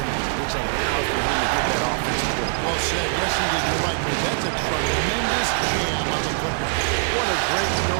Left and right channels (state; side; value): silent; left; digital silence